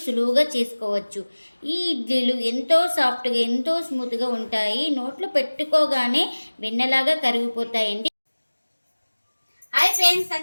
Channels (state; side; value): inverted; both; correlation -1.00